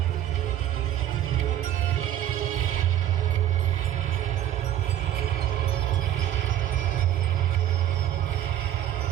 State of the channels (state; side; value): quieter; left; 11.8 dB